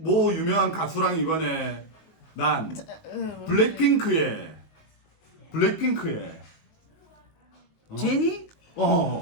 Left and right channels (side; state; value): right; late; 19 ms